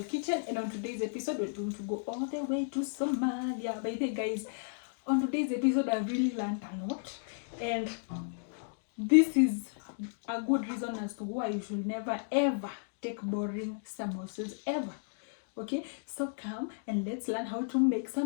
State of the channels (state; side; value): silent; right; digital silence